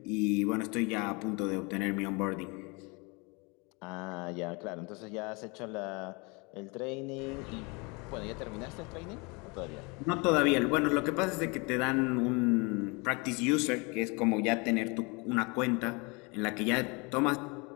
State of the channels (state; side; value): quieter; right; 29.1 dB